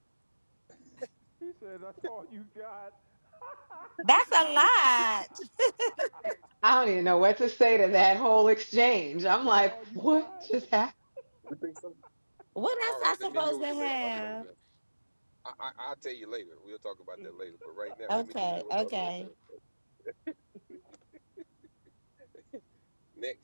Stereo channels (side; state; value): both; inverted; correlation -1.00